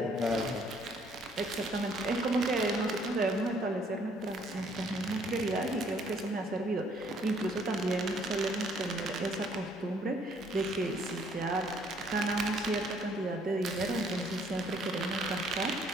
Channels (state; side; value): normal; both; correlation 0.64